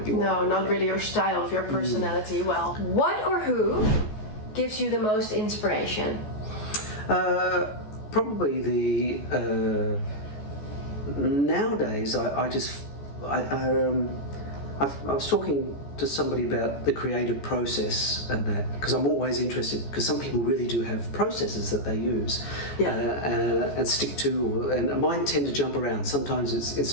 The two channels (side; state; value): right; late; 14 ms